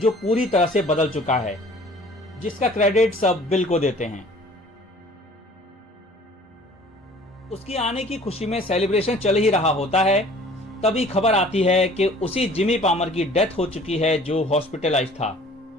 पूरी तरह से बदल चुका है, जिसका क्रेडिट सब बिल को देते हैं। उसकी आने की खुशी में सेलिब्रेशन चल ही रहा होता है, तभी खबर आती है कि उसी जिमी पामर की डेथ हो चुकी है जो हॉस्पिटलाइज था।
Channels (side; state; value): both; normal; correlation 0.50